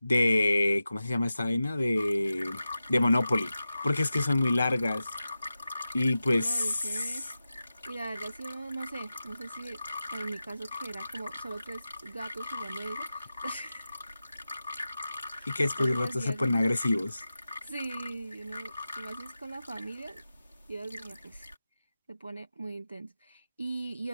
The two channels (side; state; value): both; inverted; correlation -0.93